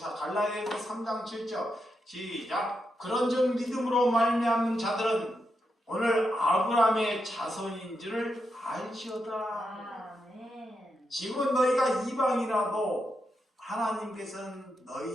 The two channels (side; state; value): both; normal; correlation 0.84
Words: 갈라디아서 3장 7절 시작. 그런즉 믿음으로 말미암는 자들은 오늘 아브라함의 자손인 줄을 알지어다. 아멘. 지금 너희가 이방이라도 하나님께서는